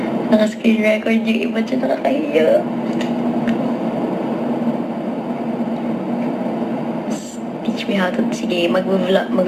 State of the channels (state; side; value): identical; both; correlation 1.00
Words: Naka-screen record yung iba dyan, nakakahiya. Teach me how to... Sige,